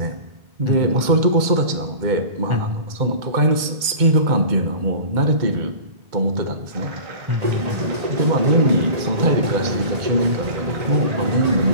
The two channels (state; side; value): late; left; 2.1 ms